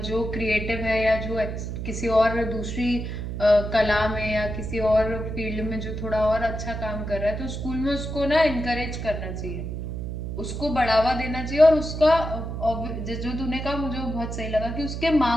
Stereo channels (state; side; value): noise; right; hum, 5 dB below the sound